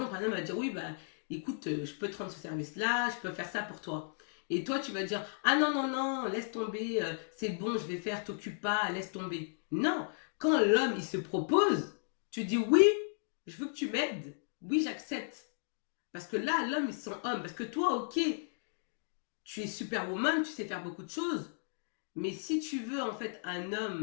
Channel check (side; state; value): right; silent; digital silence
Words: un homme va dire, oui, bah, écoute, je peux te rendre ce service-là, je peux faire ça pour toi. Et toi, tu vas dire, ah non, non, non, laisse tomber, c'est bon, je vais faire, t'occupe pas, laisse tomber. Non, quand l'homme, il se propose, tu dis, oui, je veux que tu m'aides. Oui, j'accepte. Parce que là, l'homme, il se sent homme. Parce que toi, ok, tu es superwoman, tu sais faire beaucoup de choses. Mais si tu veux, en fait, un